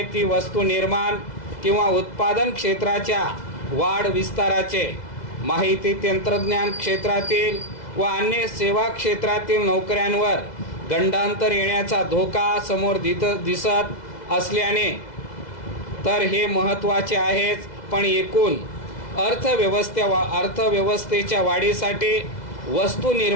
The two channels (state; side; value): late; right; 2.0 ms